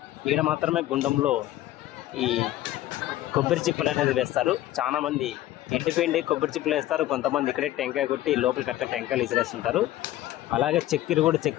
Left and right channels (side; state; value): right; quieter; 14.6 dB